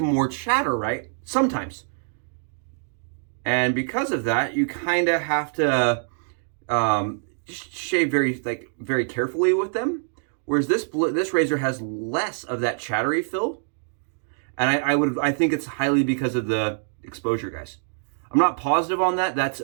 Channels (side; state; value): left; silent; digital silence